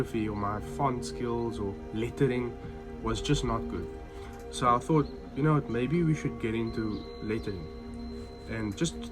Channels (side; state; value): both; identical; correlation 1.00